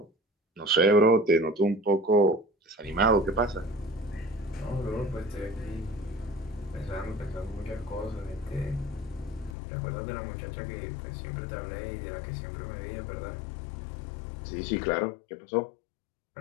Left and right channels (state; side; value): drops out; right; at 9.6 s